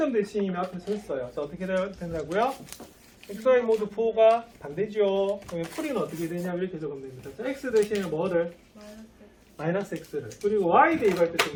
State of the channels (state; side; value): identical; both; correlation 1.00